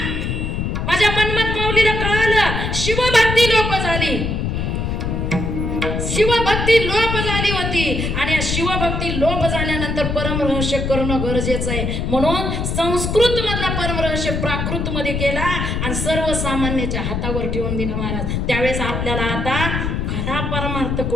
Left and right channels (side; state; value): left; noise; rumble, 1 dB below the sound